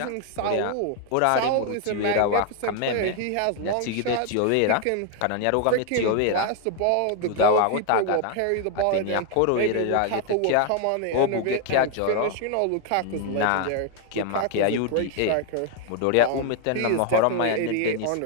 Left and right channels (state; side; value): different; both; correlation 0.01